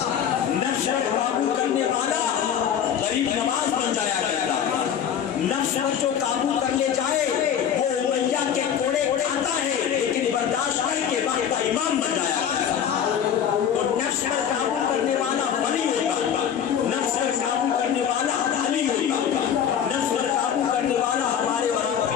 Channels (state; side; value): quieter; right; 8.7 dB